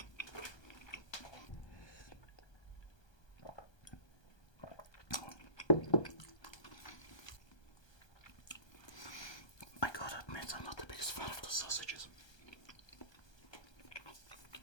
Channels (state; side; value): late; right; 1.2 ms